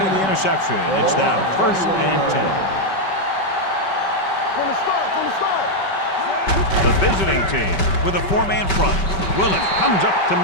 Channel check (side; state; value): right; late; 5.2 ms